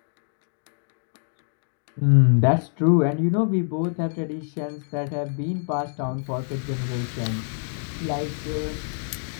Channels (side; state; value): right; silent; 61 dB below the other